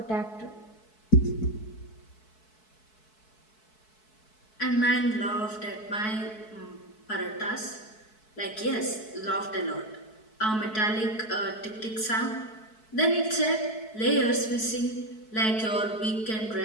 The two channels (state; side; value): late; right; 4.6 ms